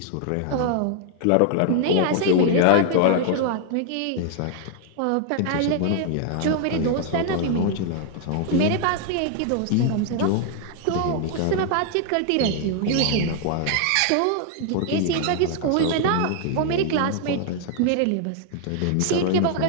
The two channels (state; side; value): different; both; correlation 0.00